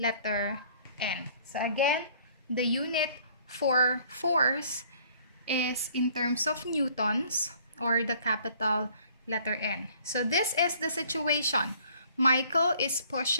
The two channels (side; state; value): both; inverted; correlation -0.57